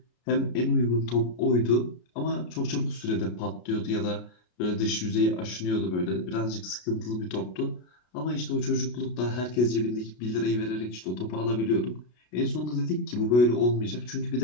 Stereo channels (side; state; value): right; late; 33 ms